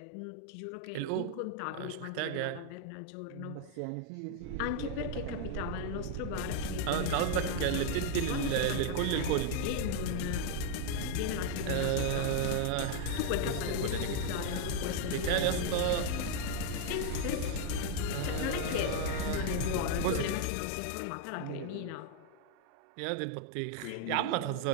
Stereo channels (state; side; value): different; both; correlation 0.00